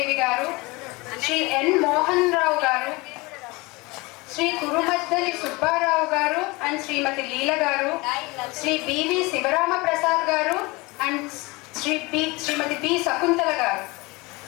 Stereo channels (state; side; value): quieter; right; 24.3 dB